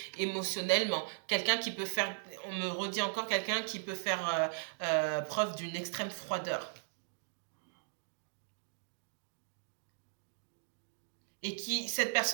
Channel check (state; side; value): silent; left; digital silence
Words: émotionnellement, quelqu'un qui peut faire, on me redit encore, quelqu'un qui peut faire preuve d'une extrême froideur. Et qui, cette